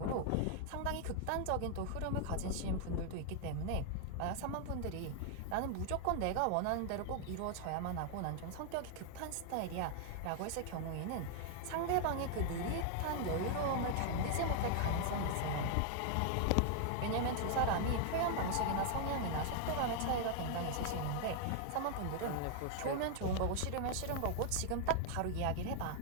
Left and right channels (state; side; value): different; both; correlation 0.00